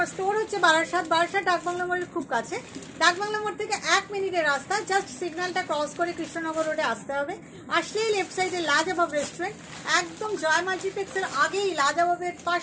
store হচ্ছে বারাসাত ডাকবাংলা মোড়ের খুব কাছে। ডাকবাংলা মোড় থেকে 1 মিনিটের রাস্তা, জাস্ট সিগন্যালটা ক্রস করে কৃষ্ণনগর রোডে আসতে হবে। আসলেই লেফট সাইডে লাজবাব রেস্টুরেন্ট, একদম জয় মাল্টিপ্লেক্সের আগেই লাজবাবের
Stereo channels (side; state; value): both; identical; correlation 1.00